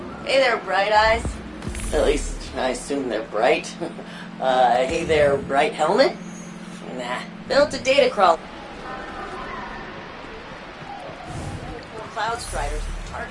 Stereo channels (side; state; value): both; identical; correlation 1.00